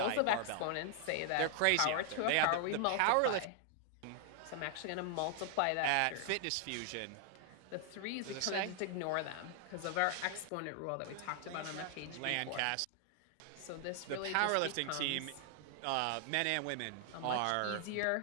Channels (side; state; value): both; different; correlation 0.00